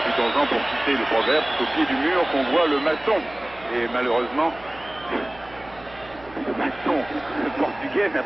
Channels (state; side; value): noise; right; hum, 22 dB below the sound